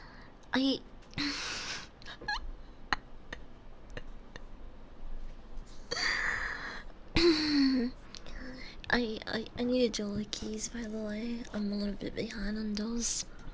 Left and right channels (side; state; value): both; identical; correlation 1.00